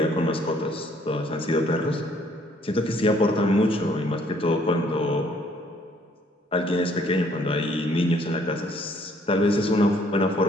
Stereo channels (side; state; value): both; normal; correlation 0.63